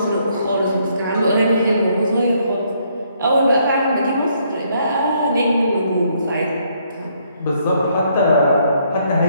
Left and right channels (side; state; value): both; inverted; correlation -0.70